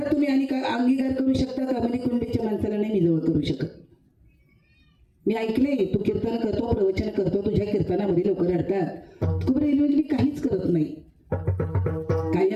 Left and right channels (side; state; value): both; identical; correlation 1.00